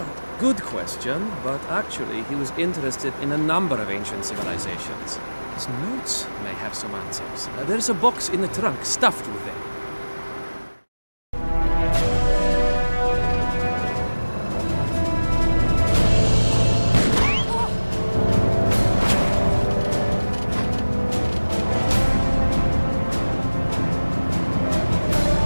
Good question, but actually he was interested in a number of ancient civilizations. His notes may have some answers. There's a box in the trunk stuffed with them.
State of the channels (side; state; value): both; inverted; correlation -1.00